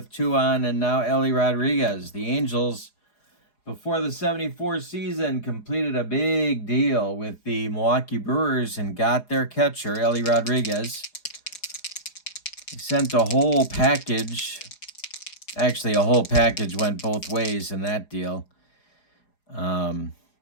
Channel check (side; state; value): right; late; 4.8 ms